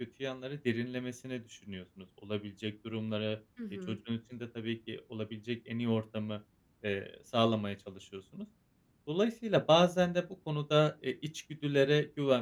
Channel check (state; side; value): identical; both; correlation 1.00